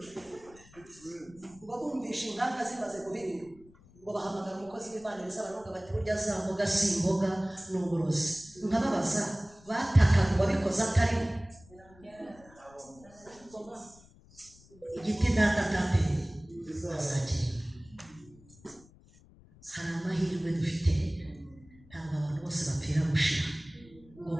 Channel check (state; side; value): noise; left; rumble, 25 dB below the sound